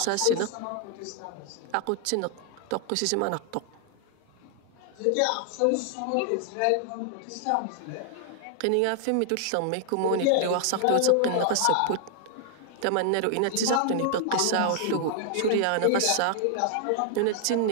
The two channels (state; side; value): different; both; correlation 0.00